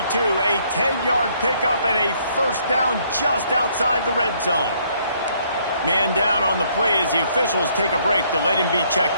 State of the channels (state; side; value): inverted; both; correlation -0.67